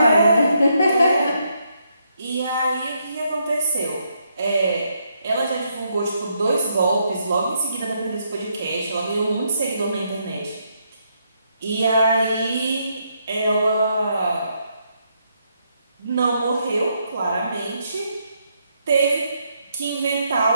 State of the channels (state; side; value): inverted; both; correlation -0.76